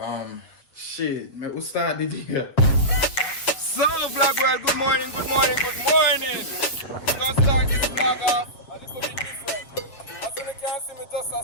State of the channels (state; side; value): late; right; 7.5 ms